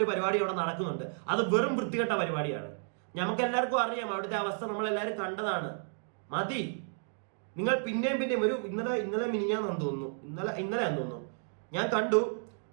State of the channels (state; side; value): silent; left; 56 dB below the other